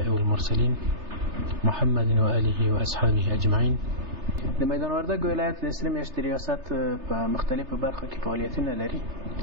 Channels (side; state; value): left; late; 3.3 ms